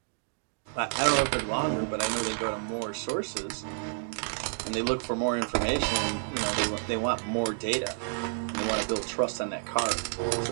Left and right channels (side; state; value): left; silent; digital silence